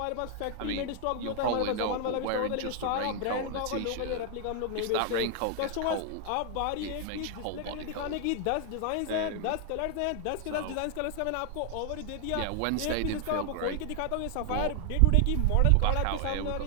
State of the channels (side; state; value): both; different; correlation 0.00